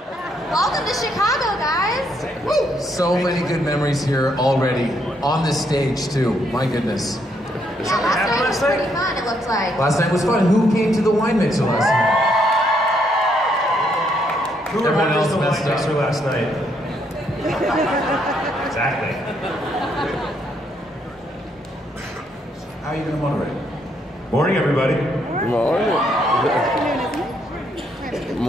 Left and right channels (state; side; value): normal; both; correlation 0.73